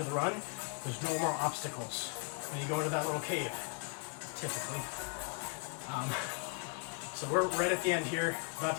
of the run. There's no more obstacles. And you go into that little cave, typically. So we're right at the end here, about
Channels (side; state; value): right; quieter; 36.1 dB